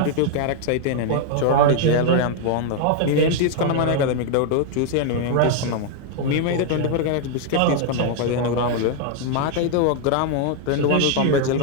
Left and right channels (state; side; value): different; both; correlation 0.00